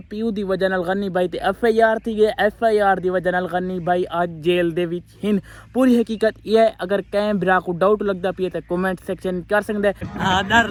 پیو دی وجہ نال غنی بھائی تے ایف آئی آر تھی گئے ایف آئی آر دی وجہ نال غنی بھائی آج جیل دے وچ ہن پوری حقیقت یہ ہے اگر کہیں برا کو ڈاؤٹ لگدا پیا تے کمنٹ سیکشن کر سکدے ہاں ڈر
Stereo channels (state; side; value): identical; both; correlation 1.00